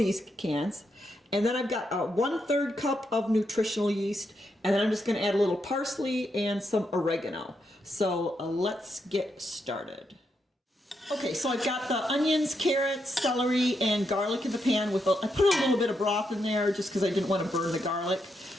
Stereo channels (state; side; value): normal; both; correlation 0.81